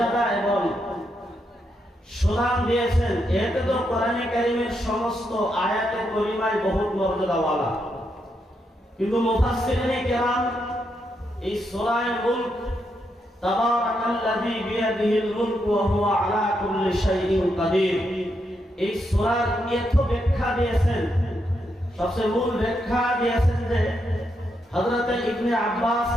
এবং সুনাম দিয়েছেন, এতে তো কোরআনে কারীমের সমস্ত আয়াতে কারিমায় বহুত মর্যাদাওয়ালা। কিন্তু মুফাসসিরিনে কেরাম এই সূরা মুলক তাবারাকাল্লাযী বিয়াদিহিল মুলক ওয়া হুয়া আলা কুল্লি শাইইন কাদির, এই সূরার এত ব্যাখ্যা দিয়েছেন। সবচেয়ে মূল ব্যাখ্যা দিয়েছেন যে হযরত ইবনে আব্বাস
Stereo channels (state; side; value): normal; both; correlation 0.81